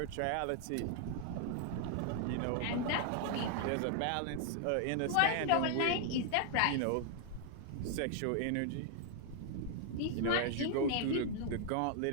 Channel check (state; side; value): different; both; correlation 0.00